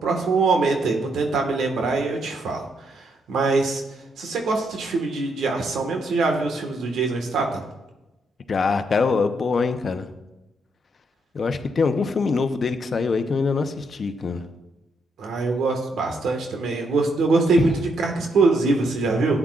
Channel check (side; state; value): both; normal; correlation 0.76